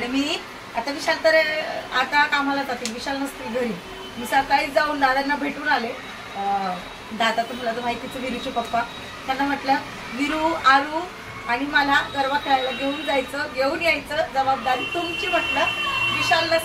मी आता विशाल तर आता कामाला जाते, विशाल नसतील घरी. मी सकाळीच जाऊन दादांना भेटून आले. दादा तुम्हाला तर माहितीच, विरूचे पप्पा. त्यांना म्हटलं विरू, आरू आणि मला गरबा खेळायला घेऊन यायचं जबाबदारी तुमची म्हटलं. विशाल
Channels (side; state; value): both; identical; correlation 1.00